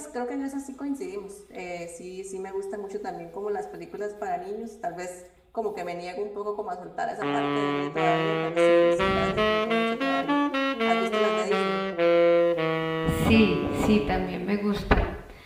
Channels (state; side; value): identical; both; correlation 1.00